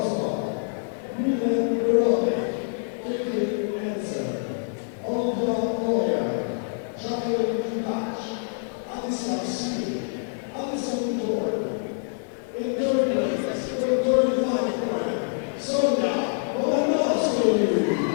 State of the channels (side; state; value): right; silent; digital silence